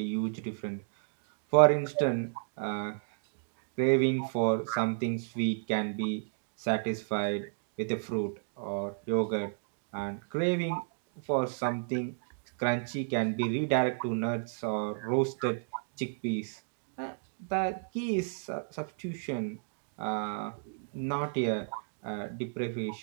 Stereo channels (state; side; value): silent; left; digital silence